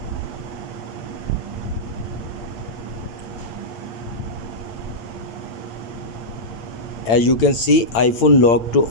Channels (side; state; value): right; late; 9.1 ms